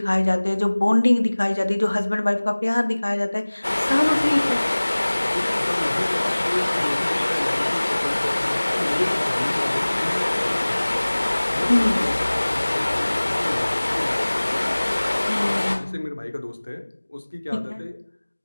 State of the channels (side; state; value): both; inverted; correlation -1.00